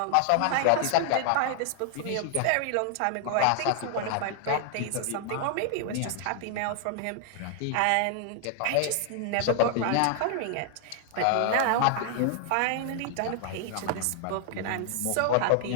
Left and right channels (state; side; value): different; both; correlation 0.00